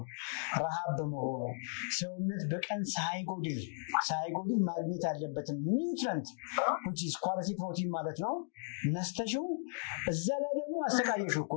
ረሃብ በመሆኑ ሰውነት በቀን ሳይጎድል ማግኘት ያለበትን ኒውትሪንት which is quality protein ማለት ነው ነስተሽው እዛ ላይ ደግሞ አስተካየሽው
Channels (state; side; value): silent; right; digital silence